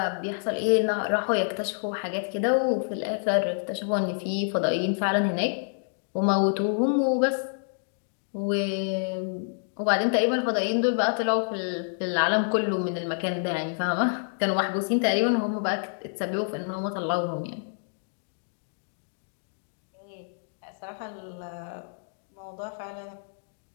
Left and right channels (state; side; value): silent; right; digital silence